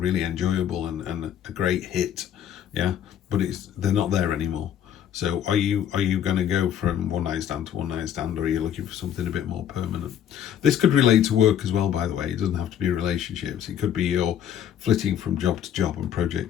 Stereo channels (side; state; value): right; quieter; 9.8 dB